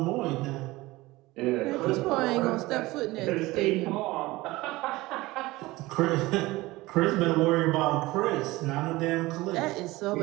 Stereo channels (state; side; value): quieter; left; 19.8 dB